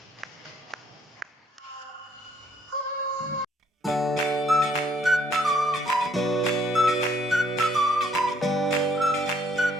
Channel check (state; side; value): normal; both; correlation 0.66